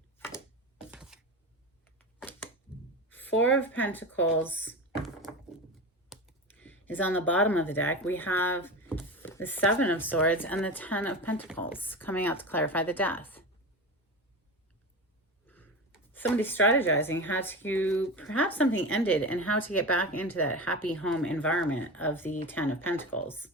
Four of Pentacles is on the bottom of the deck. We have the Seven of Swords and the Ten of Pentacles coming out to clarify the death. Somebody's strategizing how to, perhaps something ended, and how to get back into that happy home environment of the Ten of Pentacles.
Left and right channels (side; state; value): both; normal; correlation 0.26